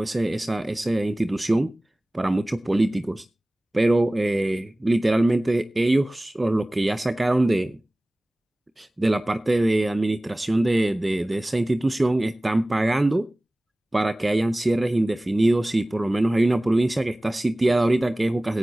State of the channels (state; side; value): normal; both; correlation 0.98